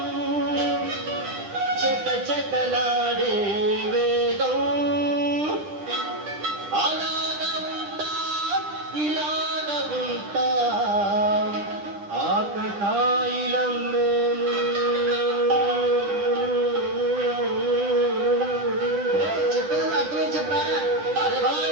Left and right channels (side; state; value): left; late; 10 ms